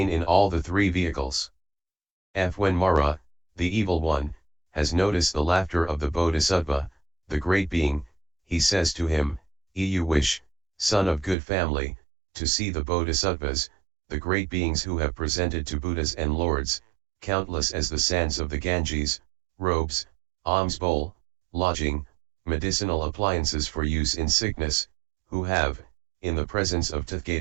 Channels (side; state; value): left; drops out; at 11.4 s